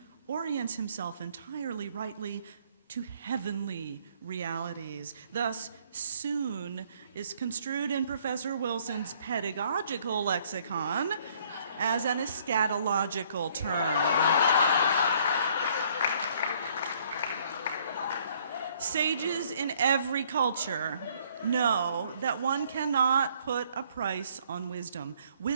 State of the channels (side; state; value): both; inverted; correlation -0.63